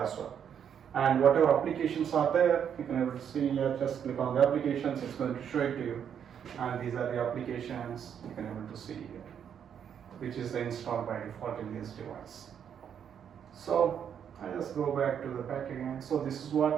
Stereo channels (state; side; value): quieter; left; 8.3 dB